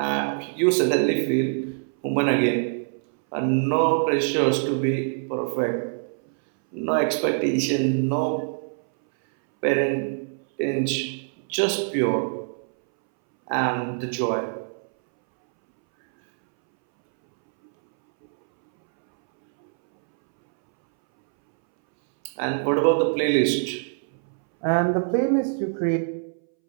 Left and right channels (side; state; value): left; silent; 63 dB below the other